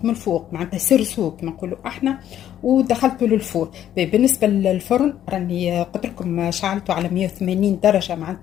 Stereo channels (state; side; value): quieter; right; 11.1 dB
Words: من الفوق معناتها سرسو كما نقولوا احنا، ودخلته للفور. بالنسبه للفرن راني قلت لكم شعلته على 180 درجه